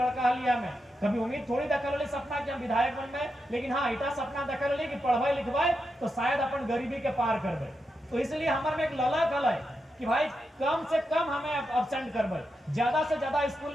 हलिया में कभी उम्मीद थोड़ी देखल सपना कि हम विधायक बनबे। लेकिन हाँ इतना सपना देखल कि पढ़वाए लिखवाए तो शायद अपन गरीबी के पार करबे। तो इसलिए हमारे में एक लला कल है कि भाई कम से कम हमें अब्सेंट करबे, ज्यादा से ज्यादा स्कूल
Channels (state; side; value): normal; both; correlation 0.86